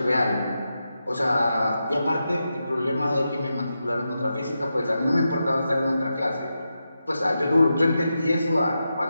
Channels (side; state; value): both; inverted; correlation -0.88